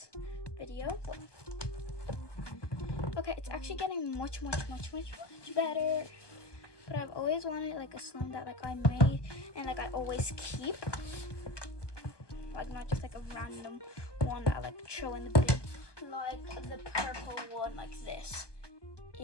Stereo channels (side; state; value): right; late; 1.2 ms